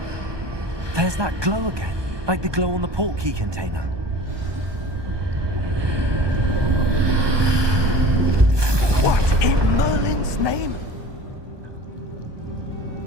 There's that glow again, like the glow on the portkey container. What in Merlin's name?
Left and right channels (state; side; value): late; left; 1.2 ms